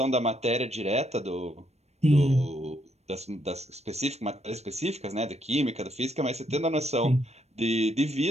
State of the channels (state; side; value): late; left; 0.31 ms